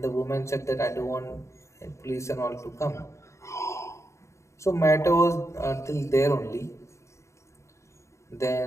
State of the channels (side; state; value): right; late; 0.14 ms